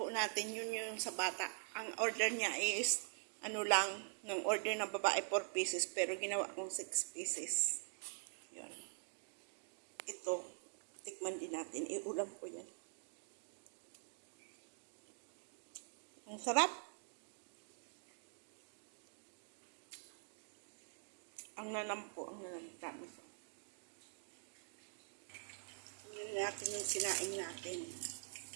natin yun yung sa bata. Ang order niya is, ano lang, ng order ng babae 4 pieces, pero ginawa kong 6 pieces. Yun. Ito, tikman din natin. Iulam ko yan. Ang sarap. Ang nanam po, ang nanam. Promise. Tingnan natin yung sinaing natin.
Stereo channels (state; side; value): silent; left; digital silence